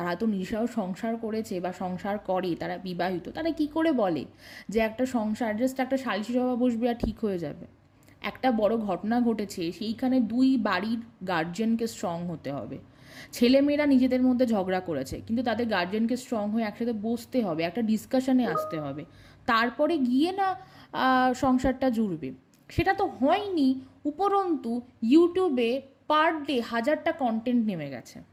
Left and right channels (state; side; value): identical; both; correlation 1.00